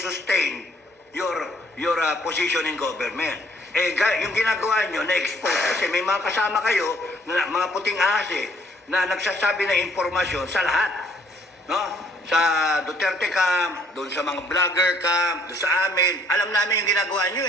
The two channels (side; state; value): both; normal; correlation 0.63